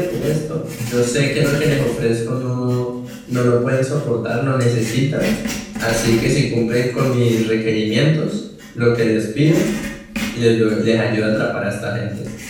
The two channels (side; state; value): both; identical; correlation 1.00